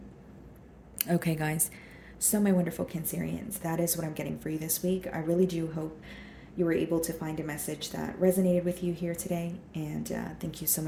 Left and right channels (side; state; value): both; identical; correlation 1.00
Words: Okay, guys. So, my wonderful Cancerians, that is what I'm getting for you this week. I really do hope you were able to find a message that resonated with you here today. And thank you so